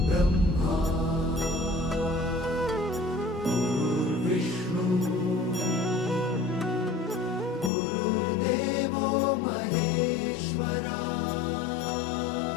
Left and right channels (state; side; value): drops out; right; at 7.7 s